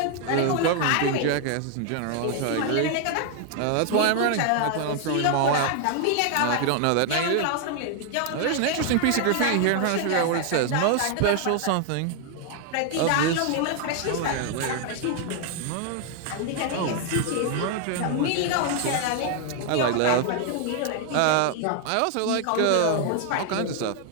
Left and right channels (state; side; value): different; both; correlation 0.00